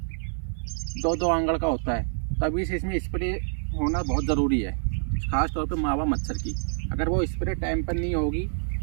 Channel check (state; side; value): silent; left; digital silence